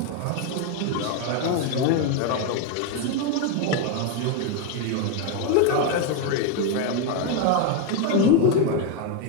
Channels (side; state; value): both; different; correlation 0.01